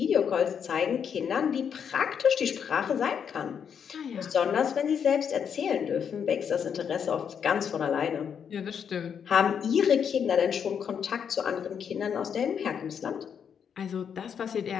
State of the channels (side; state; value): right; quieter; 7.5 dB